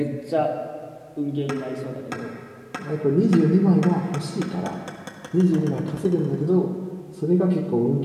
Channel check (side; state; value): both; identical; correlation 1.00